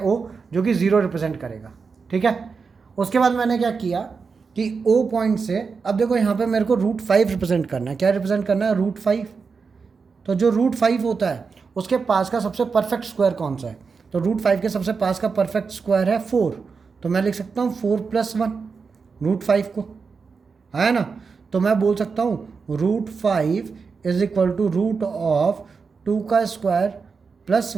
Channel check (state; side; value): quieter; left; 5.1 dB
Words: जो कि 0 रिप्रेजेंट करेगा। ठीक है, उसके बाद मैंने क्या किया कि ओ पॉइंट से, अब देखो यहाँ पे मेरे को √5 रिप्रेजेंट करना है। क्या रिप्रेजेंट करना है? √5। तो जो √5 होता है उसके पास का सबसे परफेक्ट स्क्वायर कौन सा है? तो √5 के सबसे पास का परफेक्ट स्क्वायर है 4, तो मैं लिख सकता हूँ 4 + 1 √5 को, है ना। तो मैं बोल सकता हूँ √5 इज इक्वल टू √2 का स्क्वायर प्लस